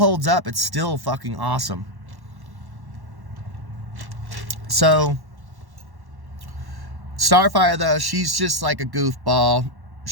up. It's still fucking awesome. So Starfire, though, she's just like a goofball.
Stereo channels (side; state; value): left; late; 1.1 ms